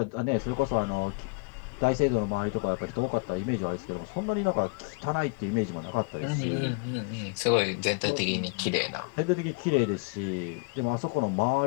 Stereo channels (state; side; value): quieter; right; 31.4 dB